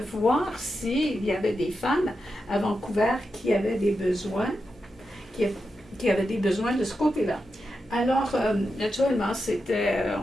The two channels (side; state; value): both; normal; correlation 0.88